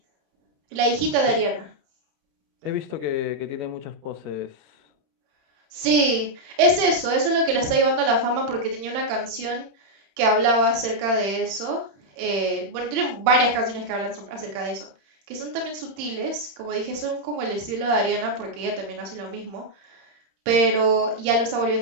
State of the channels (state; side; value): late; left; 31 ms